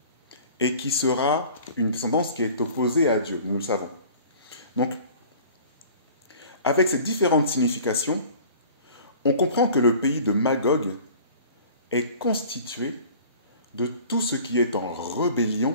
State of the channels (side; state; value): both; inverted; correlation -0.46